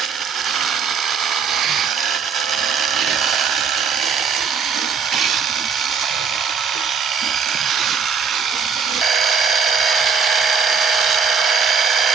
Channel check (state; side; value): quieter; left; 6.0 dB